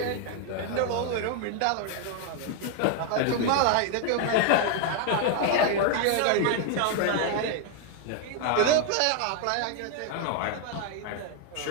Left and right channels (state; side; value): different; both; correlation 0.00